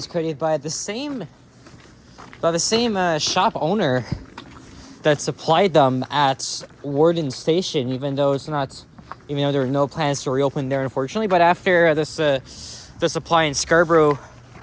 created by the same shop owner that supplied them at Warden Station, even though there are no plans to reopen there, unfortunately. But after the supply in Scarborough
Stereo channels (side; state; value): both; identical; correlation 1.00